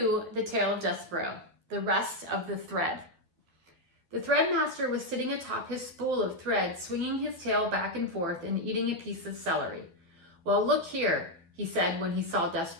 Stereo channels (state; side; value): late; left; 12 ms